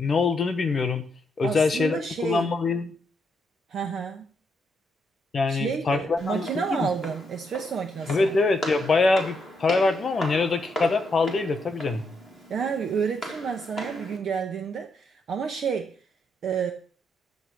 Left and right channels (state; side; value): normal; both; correlation 0.78